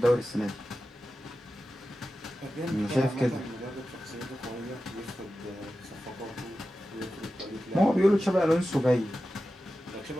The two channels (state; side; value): normal; both; correlation 0.93